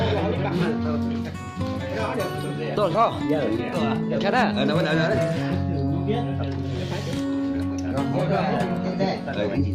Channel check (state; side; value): identical; both; correlation 1.00